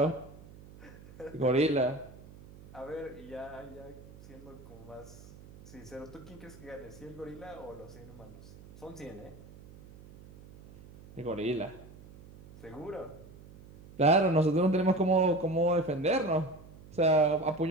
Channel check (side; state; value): right; noise; hum, 19 dB below the sound